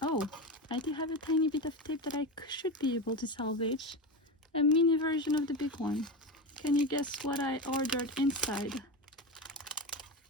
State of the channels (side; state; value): both; normal; correlation 0.20